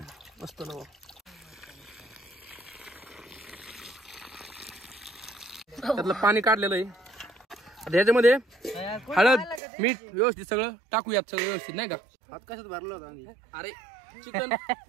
मस्त नवं. त्यातलं पाणी काढलेलं आहे. ह्याच्यामध्ये हळद मीठ व्यवस्थित सगळं टाकूयात, सगळं व्यवस्थित नाही का. हात कशात भरला होता? अरे चिकन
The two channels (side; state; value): left; drops out; at 9.6 s